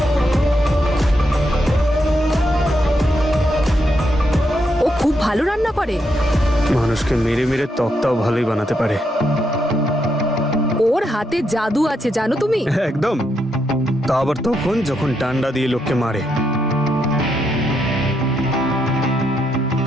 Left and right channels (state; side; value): normal; both; correlation 0.80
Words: ও খুব ভালো রান্না করে, মানুষকে মেরে মেরে তক্তাও ভালোই বানাতে পারে। ওর হাতে জাদু আছে জানো তুমি। একদম, তা আবার তখন যখন ডান্ডা দিয়ে লোককে মারে।